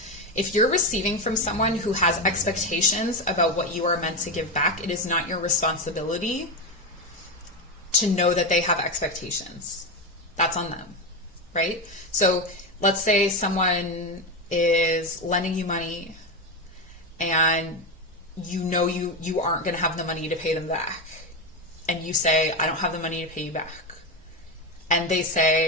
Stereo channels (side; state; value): both; normal; correlation 0.13